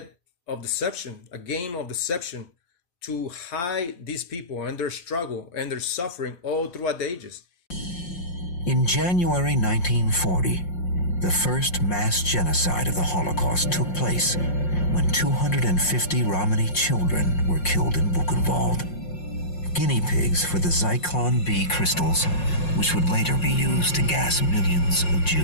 of deception, a game of deception to hide these people and their struggle and their suffering all throughout the ages. In January 1940, the first mass genocide of the Holocaust took place when 250 Romany children were killed in Buchenwald, guinea pigs for the Zyklon B crystals, which would later be used to gas millions of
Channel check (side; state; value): right; late; 5.6 ms